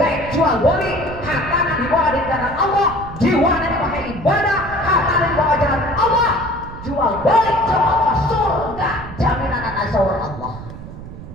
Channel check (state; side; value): noise; right; rumble, 13 dB below the sound